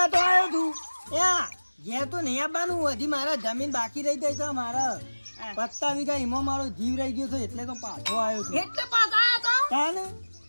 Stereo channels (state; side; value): inverted; both; correlation -1.00